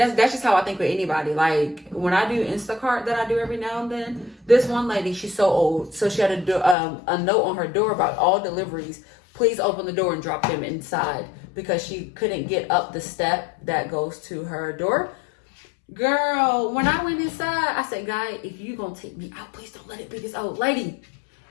that's just how I think with anybody. Like, when I do Instacart that I do every now and then, this one lady, she's so old. So she had a note on her door about all deliveries. Please open the door and drop them inside, because she couldn't get up the step that goes to her door. Girl, when I went inside, I said, guy, if you gonna take me out, please don't let it be this old lady.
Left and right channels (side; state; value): right; drops out; at 6.8 s